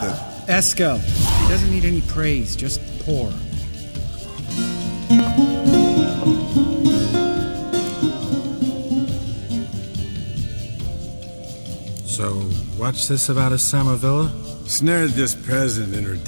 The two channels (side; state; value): both; inverted; correlation -1.00